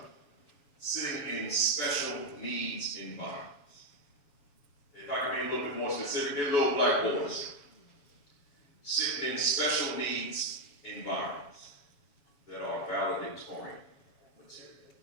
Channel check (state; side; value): late; right; 7.1 ms